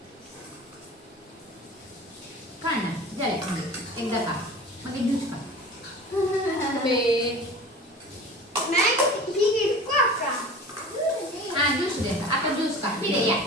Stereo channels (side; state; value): both; normal; correlation 0.38